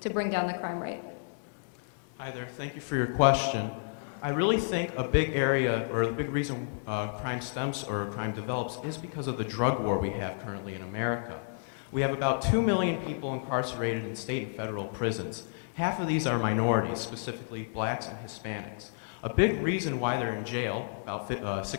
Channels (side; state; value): right; silent; 57 dB below the other